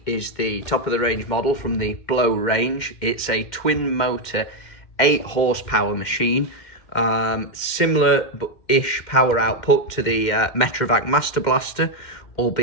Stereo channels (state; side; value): late; right; 2.1 ms